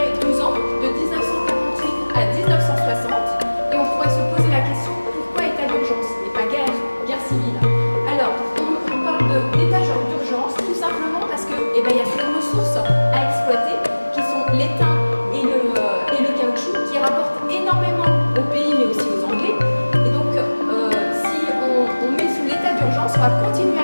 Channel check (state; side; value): inverted; both; correlation -1.00